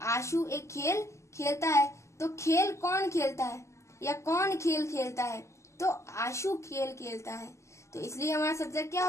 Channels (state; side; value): late; right; 0.13 ms